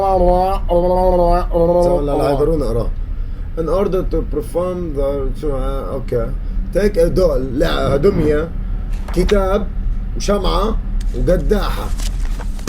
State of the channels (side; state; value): both; identical; correlation 1.00